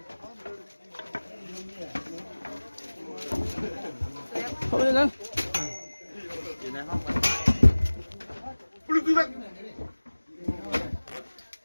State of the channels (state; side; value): inverted; both; correlation -1.00